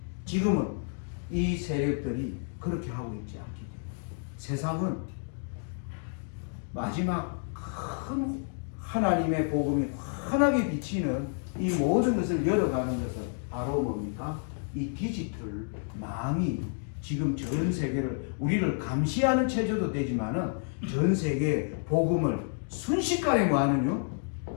지금은 이 세력들이 그렇게 하고 있지 않기 때문에 세상은 마지막 큰 하나님의 복음이 환하게 비치는 이 모든 것을 열어가는 것은 바로 뭡니까? 이 디지털 망이 지금 전 세계를 우리를 감시하는 체제도 되지만은 전 세계 복음을 순식간에 뭐하는요?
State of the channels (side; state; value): right; silent; 58 dB below the other